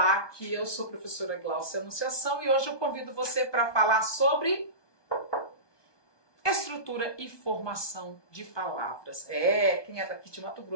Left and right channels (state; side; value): late; right; 1.2 ms